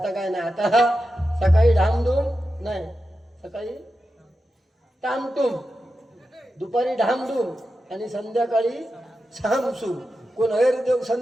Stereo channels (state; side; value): normal; both; correlation 0.90